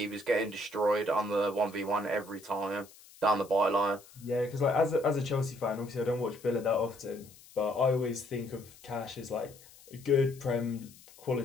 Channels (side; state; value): left; noise; hiss, 23 dB below the sound